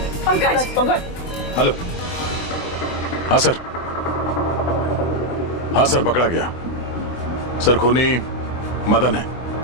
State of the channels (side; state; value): right; late; 23 ms